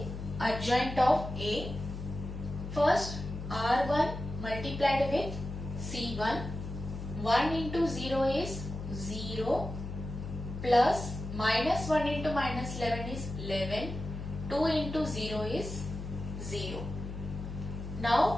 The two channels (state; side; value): noise; left; hum, 8 dB below the sound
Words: adjoint of A. First, R1 multiplied with C1. 1 into 0 is 0 plus minus 1 into minus 11 is 11. 2 into 0 is 0.